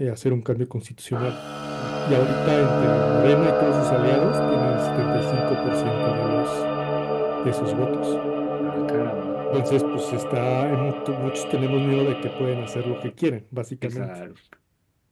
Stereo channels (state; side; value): identical; both; correlation 1.00